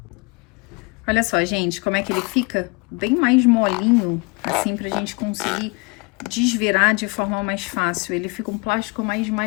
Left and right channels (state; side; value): quieter; right; 29.6 dB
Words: Olha só, gente, como é que ele fica bem mais molinho, assim, pra gente conseguir desvirar de forma mais fácil. Ele fica um plástico mais